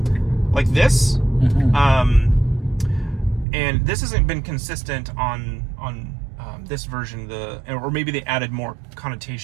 like this. And this hasn't been consistent on this version, or maybe they added more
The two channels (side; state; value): left; drops out; at 3.5 s